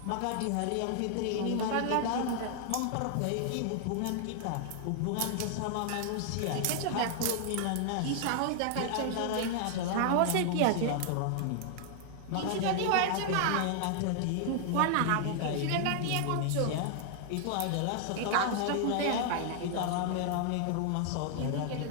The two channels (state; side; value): different; both; correlation 0.00